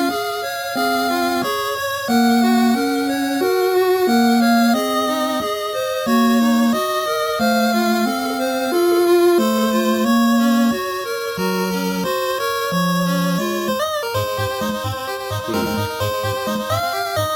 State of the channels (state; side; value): identical; both; correlation 1.00